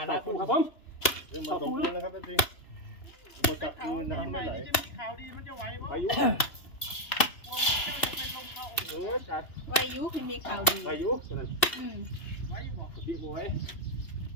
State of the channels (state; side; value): late; right; 2.9 ms